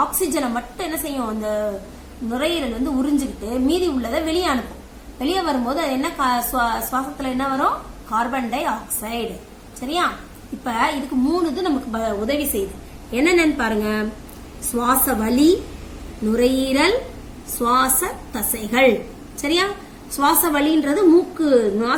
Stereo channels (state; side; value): identical; both; correlation 1.00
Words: ஆக்சிஜனை மட்டும் என்ன செய்யும்? அந்த நுரையீரல் வந்து உறிஞ்சுக்கிட்டு மீதி உள்ளதை வெளியே அனுப்பும். வெளியே வரும்போது அது என்ன? சுவாசத்துல என்ன வரும்? Carbon di oxide. சரியா? இப்ப இதுக்கு 3 இது நமக்கு உதவி செய்யுது. என்னென்னு பாருங்க. சுவாச வலி, நுரையீரல், சுவாச தசைகள். சரியா? சுவாச வலின்றது மூக்கு